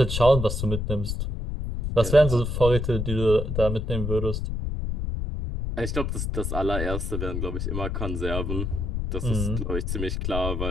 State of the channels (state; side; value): noise; left; rumble, 2 dB below the sound